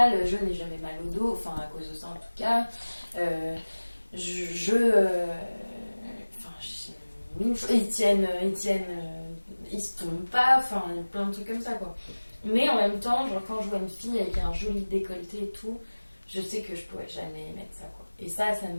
Je n'ai jamais mal au dos, enfin à cause de ça en tout cas. Ils se tombent pas, enfin plein de trucs comme ça quoi. Mais en même temps, genre quand je vois une fille avec un joli décolleté et tout, je sais que je pourrais jamais mettre ça quoi. Et ça me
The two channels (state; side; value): inverted; both; correlation -1.00